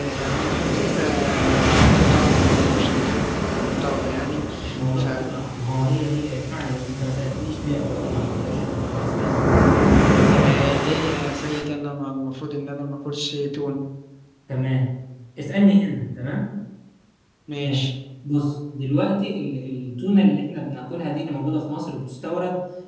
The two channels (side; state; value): both; identical; correlation 1.00